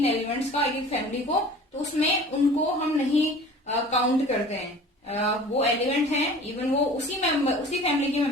एलिमेंट्स का, एक फैमिली को, तो उसमें उनको हम नहीं काउंट करते हैं। वो एलिमेंट हैं, इवन वो उसी फैमिली के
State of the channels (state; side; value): normal; both; correlation 0.43